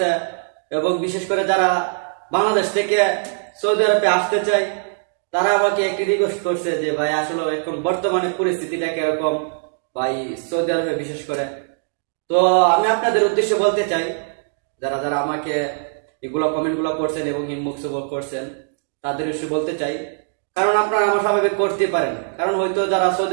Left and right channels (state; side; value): silent; left; digital silence